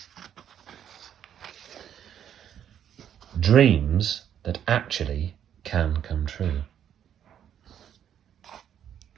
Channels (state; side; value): quieter; left; 9.5 dB